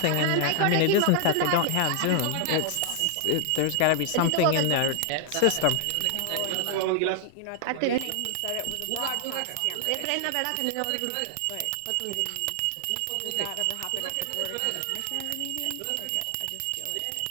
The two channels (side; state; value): both; different; correlation 0.00